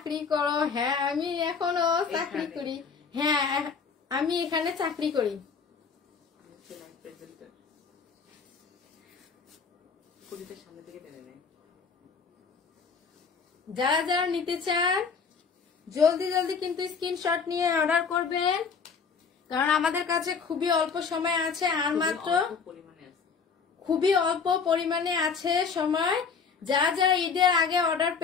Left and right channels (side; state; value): right; quieter; 5.6 dB